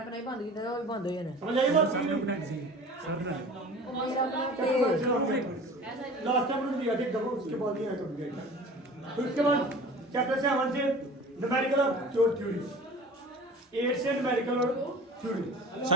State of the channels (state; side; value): normal; both; correlation 0.41